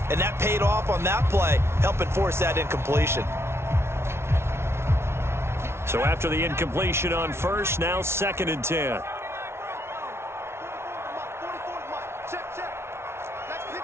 And that paid off on that play, helping force that incompletion. So after the incompletion on 1st, now 2nd and 10.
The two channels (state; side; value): late; left; 0.12 ms